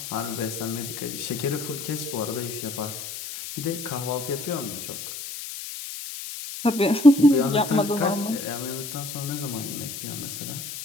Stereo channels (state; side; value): noise; left; hiss, 8 dB below the sound